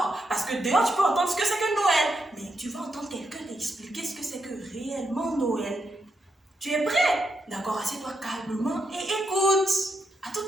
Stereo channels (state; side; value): normal; both; correlation 0.82